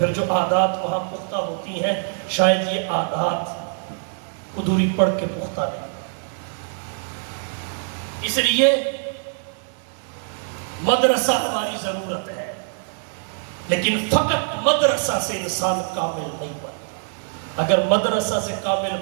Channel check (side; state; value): left; silent; digital silence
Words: جو عادات وہاں پختہ ہوتی ہیں شاید یہ عادات ادھوری پڑھ کے پختہ نہیں. اس لیے مدرسہ ہماری ضرورت ہے، لیکن فقط مدرسہ سے انسان کامل نہیں بنتا. اگر مدرسہ سے کامل